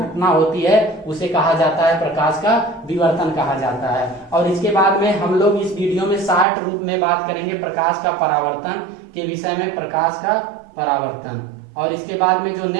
होती है उसे कहा जाता है प्रकाश का विवर्तन कहा जाता है। और इसके बाद में हम लोग इस वीडियो में शॉर्ट रूप में बात करेंगे प्रकाश का परावर्तन के विषय में, प्रकाश का परावर्तन। और इसके बाद में जो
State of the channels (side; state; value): left; drops out; at 6.5 s